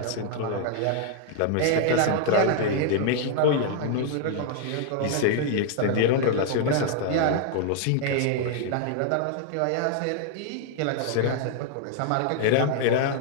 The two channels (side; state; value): both; different; correlation 0.00